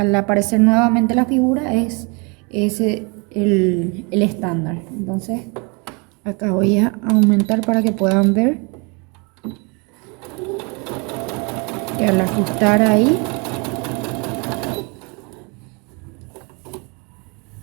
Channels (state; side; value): quieter; left; 31.4 dB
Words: aparecer nuevamente la figura, es ese el estándar. Entonces acá voy a aumentar para que puedan ver. Y al ajustar ahí